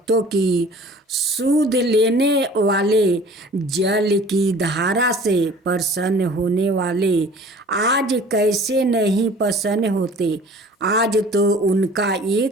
की सूध लेने वाले, जल की धारा से प्रसन्न होने वाले आज कैसे नहीं प्रसन्न होते। आज तो उनका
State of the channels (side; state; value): both; normal; correlation 0.47